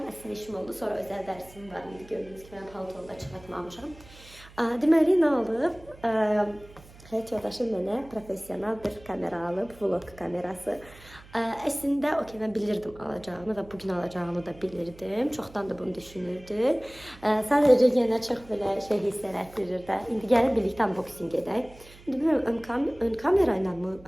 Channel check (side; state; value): right; noise; hum, 21 dB below the sound